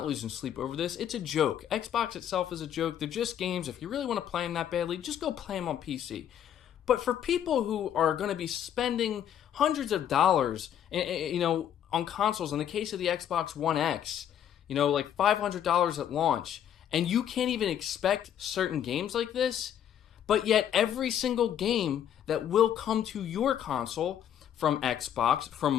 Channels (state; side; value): quieter; right; 9.9 dB